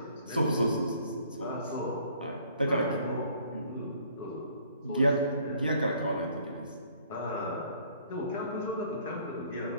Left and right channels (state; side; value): inverted; both; correlation -0.59